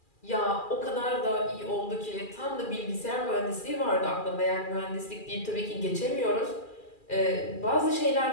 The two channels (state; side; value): late; right; 2.4 ms